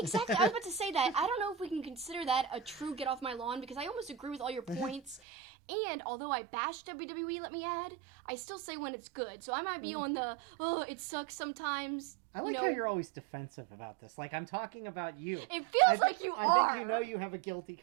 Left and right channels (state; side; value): drops out; left; at 5.2 s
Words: I was about to say that. I don't know if we can consider that a true get off my lawn, because I almost agree with all your points. And although I bash WWE, let me add, I still say when it's good. So I might be on the, it sucks sometimes. I like how you're always defensive about this. Like, I'm talking about you. It feels like you are. I think you know you have a guilty